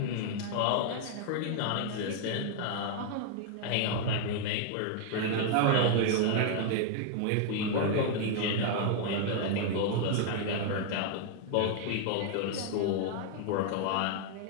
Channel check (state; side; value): different; both; correlation 0.00